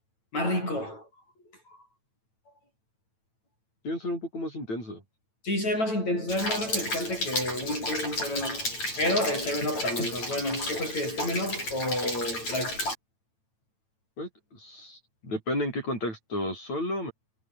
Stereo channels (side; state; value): right; late; 9.0 ms